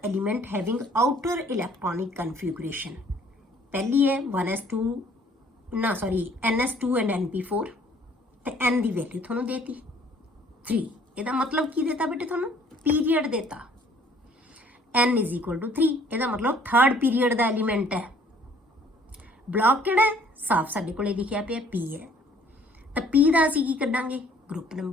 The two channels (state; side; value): normal; both; correlation 0.58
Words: element having outer electronic configuration। पहली है 1s2 ना सॉरी ns2 एंड np4 ਤੇ n ਦੀ ਵੈਲਿਊ ਤੁਹਾਨੂੰ ਦੇਤੀ 3। ਇਹਦਾ ਮਤਲਬ ਕੀ ਦੇਤਾ ਬੇਟੇ ਤੁਹਾਨੂੰ, ਪੀਰੀਅਡ ਦੇਤਾ n = 3, ਇਹਦਾ ਮਤਲਬ ਥਰਡ ਪੀਰੀਅਡ ਦਾ ਐਲੀਮੈਂਟ ਹੈ। ਬਲੌਕ ਕਿਹੜਾ ਹੈ, ਸਾਫ ਸਾਡੇ ਕੋਲੇ ਲਿਖਿਆ ਪਿਆ p ਹੈ, ਤਾਂ p ਦਾ ਅਸੀਂ ਕੀ ਕੱਢਾਂਗੇ, ਗਰੁੱਪ